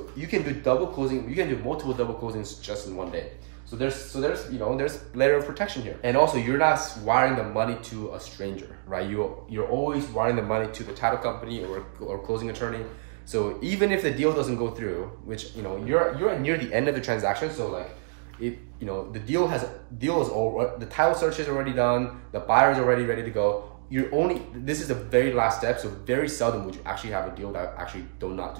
you can do double closing. You can do multiple double closings just in one day. So there's layer of protection here. And also, you're not wiring the money to a stranger, right? You're always wiring the money to the title company or closing attorney. So even if the deal doesn't go through, which you're near the end of the transaction, so like the title search is already done, the buyer is already ready to go. This is the very last step, so very seldom would you actually have a deal that actually do not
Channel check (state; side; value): silent; left; digital silence